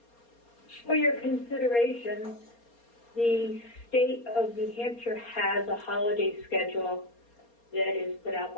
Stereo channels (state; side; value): late; right; 4.3 ms